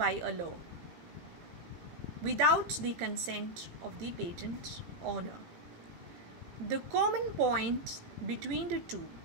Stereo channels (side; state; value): left; late; 18 ms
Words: a law without the consent of the patent owner. The common point between the two